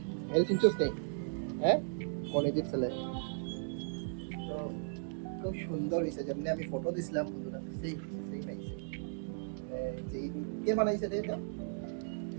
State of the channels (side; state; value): left; silent; digital silence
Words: এল চিনছস নেই? হ্যাঁ, কলেজের ছেলে। তো খুব সুন্দর হয়েছে, যেমনি আমি ফটো দিছিলাম বন্ধুরা, সেই পাইছে। যেই কে বানাইছে রে এটা?